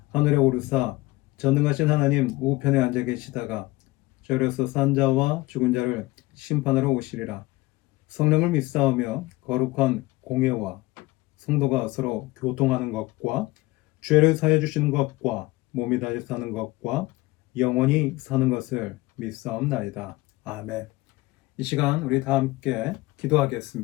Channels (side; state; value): right; quieter; 20.2 dB